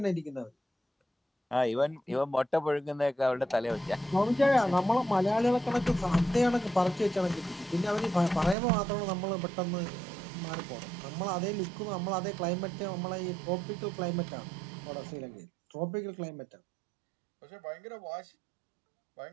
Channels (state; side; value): drops out; left; at 8.6 s